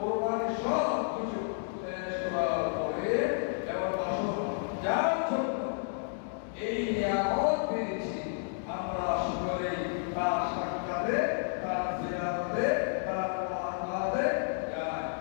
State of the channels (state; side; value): silent; right; digital silence